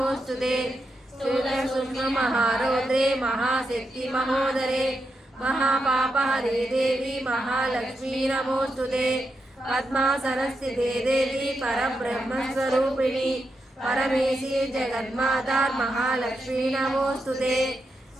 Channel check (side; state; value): both; normal; correlation 0.85